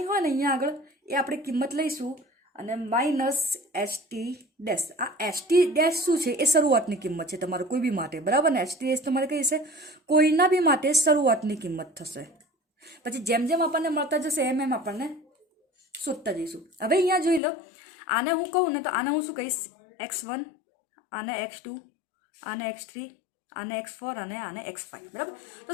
હોય ને અહીંયા આગળ એ આપણે કિંમત લઈશું અને માઇનસ ST ડેશ. આ ST ડેશ શું છે, એ શરૂઆતની કિંમત છે તમારે કોઈ બી માટે, બરાબર ને. ST ડેશ તમારે કઈ છે, કોઈના બી માટે શરૂઆતની કિંમત થશે. પછી જેમ જેમ આપણને મળતા જશે એમ એમ આપણને શોધતા જઈશું. હવે અહીંયા જોઈ લો, આને હું કહું ને તો આને હું શું કહીશ, x1, આને x2, આને x3, આને x4 અને આને x5, બરાબર. તો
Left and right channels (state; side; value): drops out; right; at 17.4 s